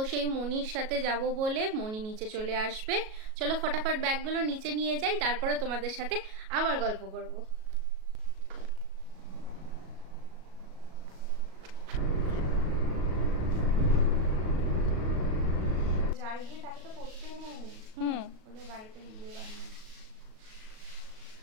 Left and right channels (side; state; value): left; late; 37 ms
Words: সেই মণির সাথে যাব বলে মণি নিচে চলে আসবে। চলো ফটাফট ব্যাগগুলো নিচে নিয়ে যাই, তারপরে তোমাদের সাথে আবার গল্প করব। যার বিয়ে তাকে তো করতেই নেই। ওদের বাড়িতে বিয়ে বানায়।